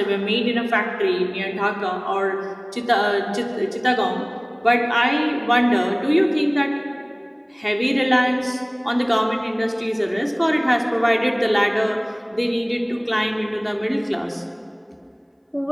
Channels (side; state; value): both; identical; correlation 1.00